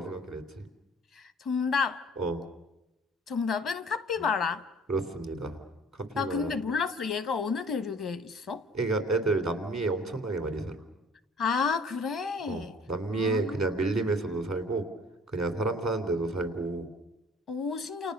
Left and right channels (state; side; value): normal; both; correlation 0.51